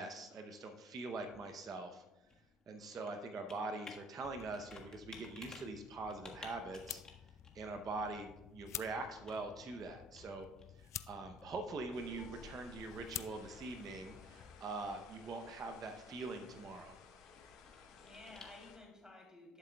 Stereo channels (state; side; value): normal; both; correlation 0.57